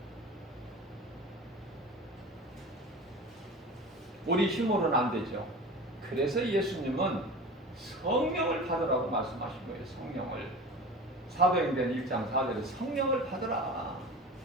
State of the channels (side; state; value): both; normal; correlation 0.35